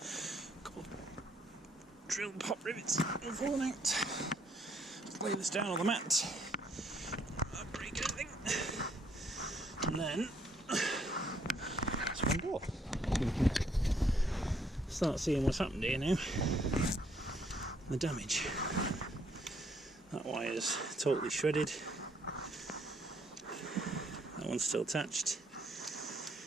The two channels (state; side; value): normal; both; correlation 0.69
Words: Couple of drill pop rivets have fallen out. Lay this down on the mat. Not break anything. And then it's one door. Start seeing what's happened here now. The damage. That wire's totally shredded. That one's still attached.